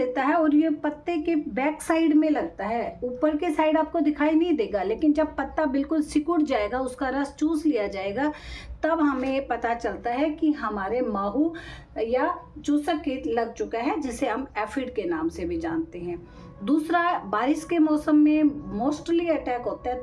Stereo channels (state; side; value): identical; both; correlation 1.00